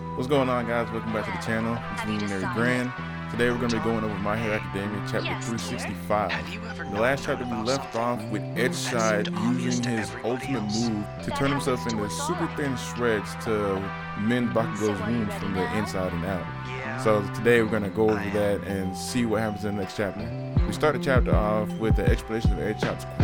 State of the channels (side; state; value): both; identical; correlation 1.00